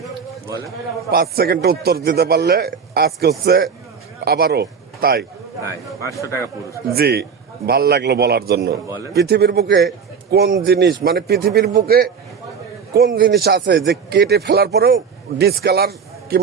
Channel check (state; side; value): quieter; left; 6.3 dB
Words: 5 সেকেন্ডে উত্তর দিতে পারলে আজকে হচ্ছে আবারও তাই 500 টাকা পুরস্কার। জি, ভাল লাগলো বলার জন্য। পৃথিবীর বুকে কোন জিনিস, মানে পৃথিবীর বুকে কোন জিনিস আছে যে কেটে ফেলার পরেও ডিসকালার